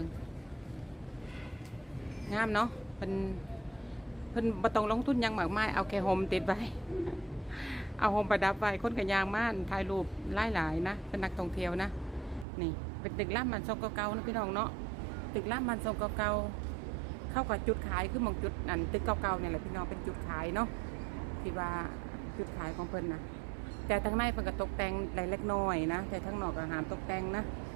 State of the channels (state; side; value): drops out; left; at 12.5 s